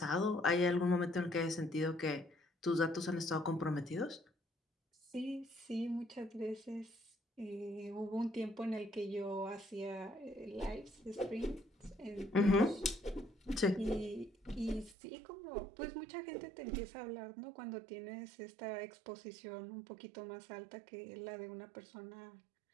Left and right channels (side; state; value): left; drops out; at 15.0 s